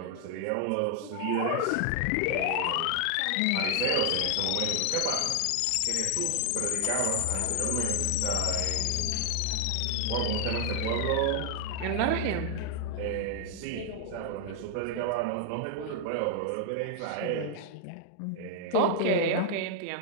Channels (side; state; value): both; different; correlation 0.00